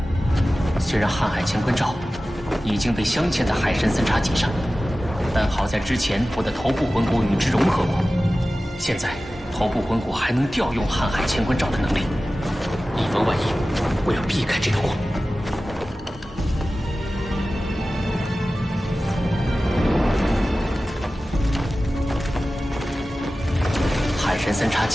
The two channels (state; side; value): normal; both; correlation 0.96